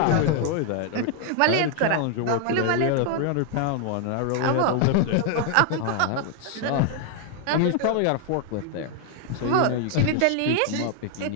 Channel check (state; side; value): different; both; correlation 0.00